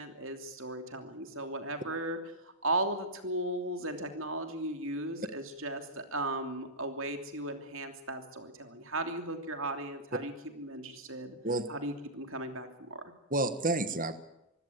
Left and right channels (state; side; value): normal; both; correlation -0.11